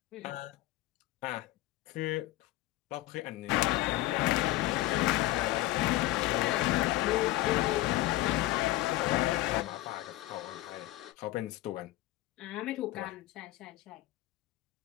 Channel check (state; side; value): quieter; right; 17.0 dB